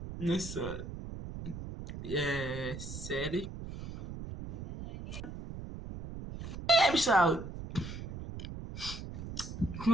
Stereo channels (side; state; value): right; noise; rumble, 9 dB below the sound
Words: nessa série. Pessoal,